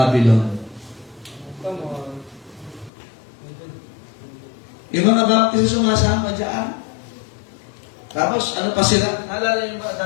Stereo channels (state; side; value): drops out; right; at 2.9 s